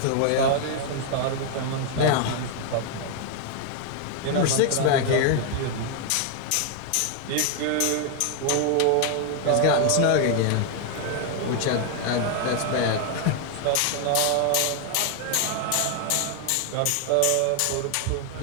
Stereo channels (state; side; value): different; both; correlation 0.00